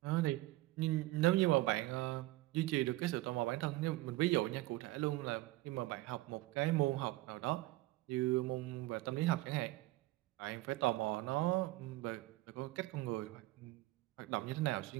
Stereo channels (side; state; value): left; quieter; 18.8 dB